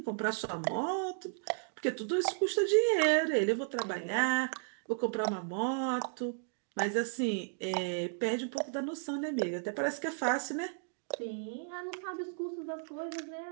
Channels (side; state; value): left; silent; digital silence